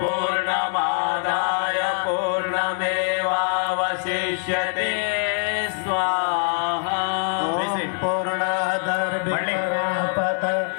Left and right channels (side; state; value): right; silent; 63 dB below the other